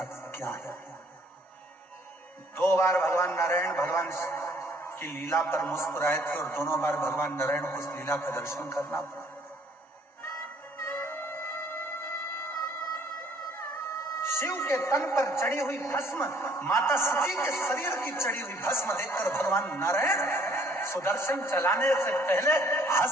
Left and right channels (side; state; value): both; normal; correlation 0.61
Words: क्या है। 2 बार भगवान नारायण भगवान की लीला पर मुस्कुराए थे और दोनों बार भगवान नारायण को उस लीला का दर्शन करना पड़ा। शिव के तन पर चढ़ी हुई भस्म, माता सती के शरीर की चढ़ी हुई भस्म देखकर भगवान नारायण सुदर्शन चलाने से पहले